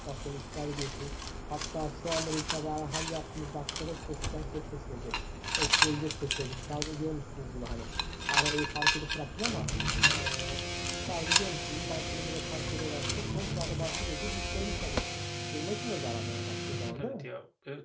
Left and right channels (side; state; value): both; identical; correlation 1.00